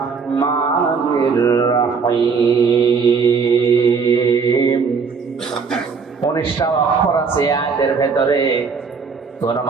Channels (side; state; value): left; quieter; 5.4 dB